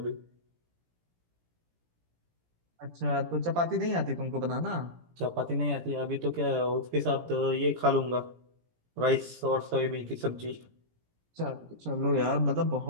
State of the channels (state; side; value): late; left; 17 ms